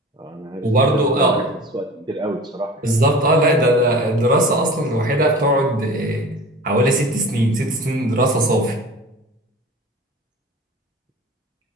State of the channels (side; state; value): both; normal; correlation 0.39